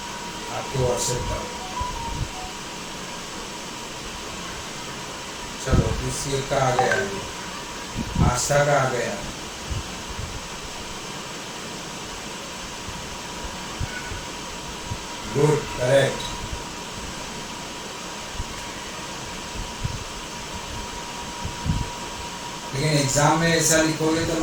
आपके व्हाट्सएप का। चलो किसी का आ गया, आस्था का आ गया। Good, correct. लेकिन एग्जाम में ऐसा लिखोगे तो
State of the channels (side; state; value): both; identical; correlation 1.00